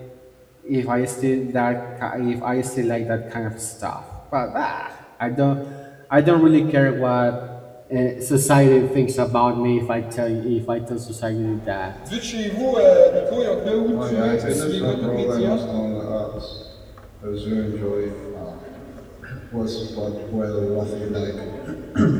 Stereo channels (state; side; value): identical; both; correlation 1.00